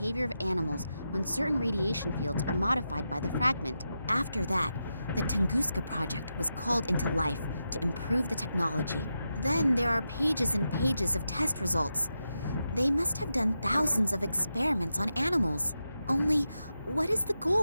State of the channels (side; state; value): both; inverted; correlation -0.88